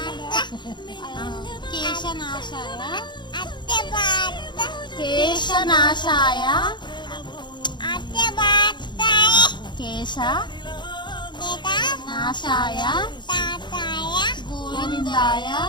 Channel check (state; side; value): late; right; 0.22 ms